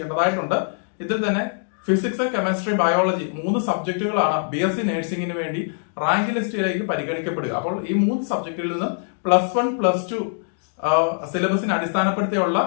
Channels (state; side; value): silent; right; digital silence